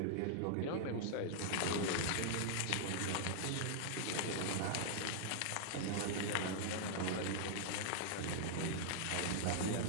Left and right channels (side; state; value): both; different; correlation -0.01